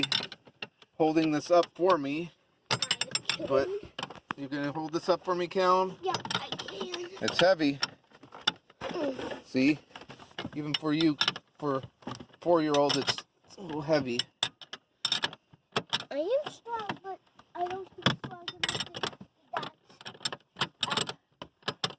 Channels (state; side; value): identical; both; correlation 1.00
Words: holding this up for me, but you're gonna hold this up for me, Callum? Yeah, I can. It's heavy. See, even for you, for 4-year-old, it's a little heavy. I am strong, but I don't think strong enough to that.